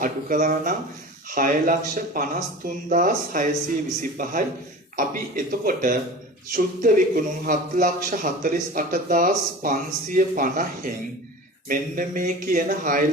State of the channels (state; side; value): normal; both; correlation 0.36